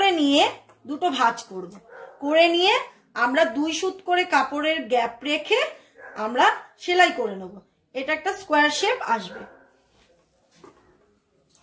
নিয়ে দুটো ভাঁজ করব, করে নিয়ে আমরা 2 সুত করে কাপড়ের গ্যাপ রেখে আমরা সেলাই করে নেব। এটা একটা স্কোয়ার শেপ আসবে।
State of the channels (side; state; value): both; identical; correlation 1.00